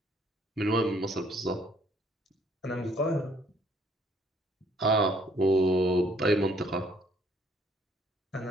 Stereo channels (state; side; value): normal; both; correlation 0.64